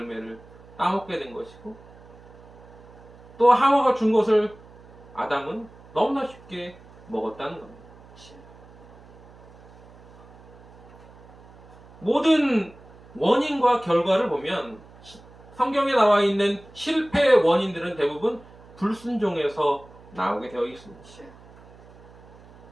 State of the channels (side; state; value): right; noise; hum, 22 dB below the sound